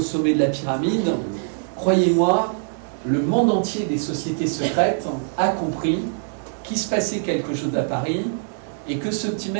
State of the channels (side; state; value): left; silent; digital silence